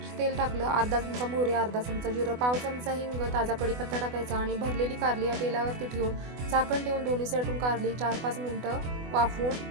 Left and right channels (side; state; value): left; late; 24 ms